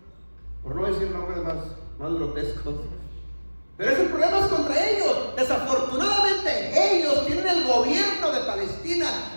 por no decir nombres más grotescos. Pero ese problema es contra ellos. Desafortunadamente ellos tienen el gobierno de Palestina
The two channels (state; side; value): inverted; both; correlation -1.00